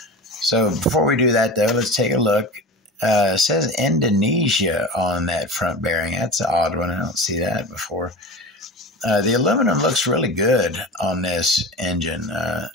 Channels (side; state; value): both; normal; correlation 0.30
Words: So before we do that, though, let's take a look. It says Indonesia on that front bearing. That's an odd one. I don't see that before. The aluminum looks really good on this engine.